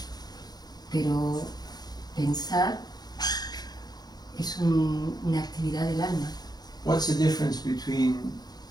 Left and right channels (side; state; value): right; late; 0.19 ms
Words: pero pensar es una actividad del alma. What's the difference between